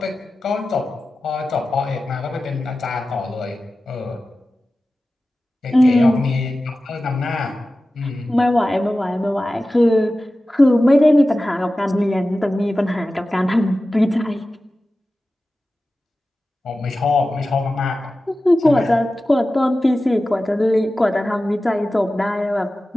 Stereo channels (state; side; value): normal; both; correlation 0.95